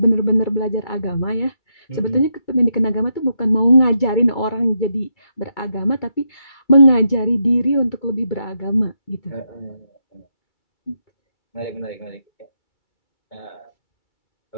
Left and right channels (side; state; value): right; late; 2.3 ms